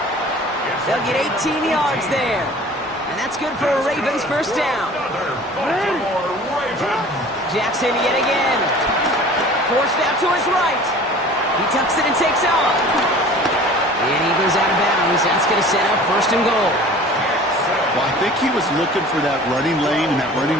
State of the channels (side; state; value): both; normal; correlation 0.44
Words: They'll get 18 yards there. And that's good for a Ravens first down. Jackson yet again. Forced out to his right. He tucks it and takes off. And he goes out of bounds. That's going to set up 1st and goal. Well, I think he was looking for that running lane and that